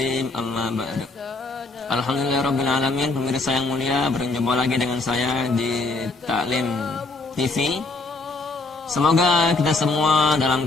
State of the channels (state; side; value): quieter; right; 3.3 dB